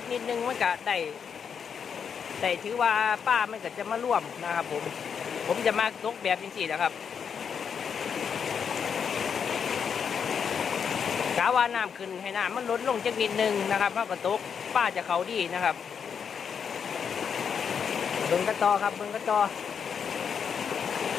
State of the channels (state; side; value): quieter; right; 7.0 dB